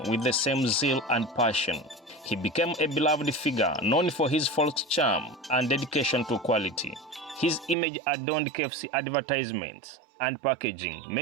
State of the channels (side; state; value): left; drops out; at 7.8 s